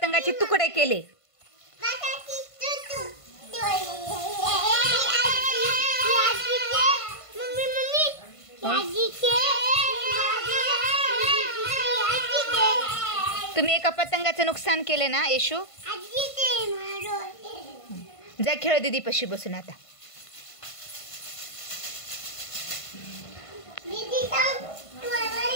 तुकडे केले. तुम्ही एका पतंगाचं नुकसान केले ना येशू. जा खेळ दीदी पशी बसून आता.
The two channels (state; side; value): late; right; 1.5 ms